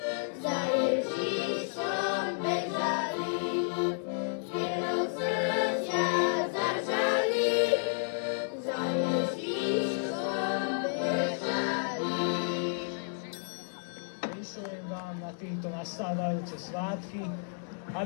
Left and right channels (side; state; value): right; silent; digital silence